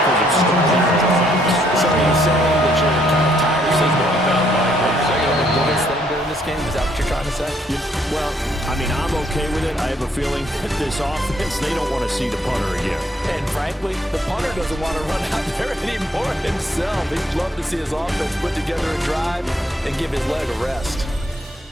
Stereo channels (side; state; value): both; normal; correlation 0.69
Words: of starting drives. So are you saying that you're kind of tired of seeing the biggest thing during this game? Is that what you're trying to say? Well, I mean, I'm okay with it. I have a feeling that this offense, they don't want to see the punter again. And frankly, the punter doesn't want to run out there anymore himself. He'd love to see his offense put together a drive and give his leg a rest.